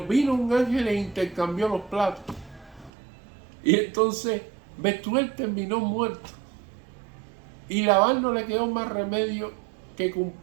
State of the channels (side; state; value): left; drops out; at 2.9 s